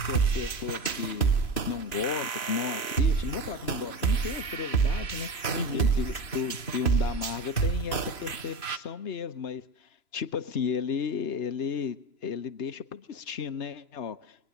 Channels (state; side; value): late; right; 3.0 ms